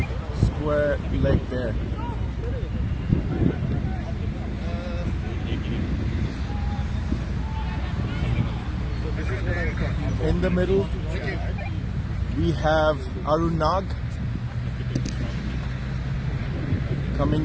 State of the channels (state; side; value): identical; both; correlation 1.00